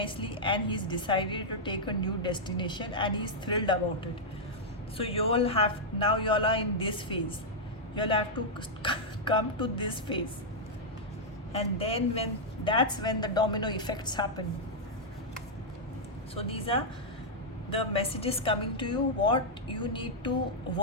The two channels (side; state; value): both; normal; correlation -0.06